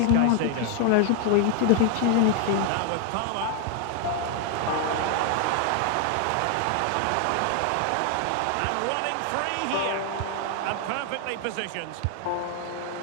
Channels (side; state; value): both; different; correlation 0.00